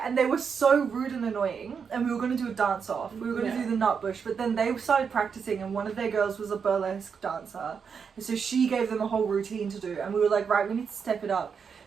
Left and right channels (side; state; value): left; quieter; 6.3 dB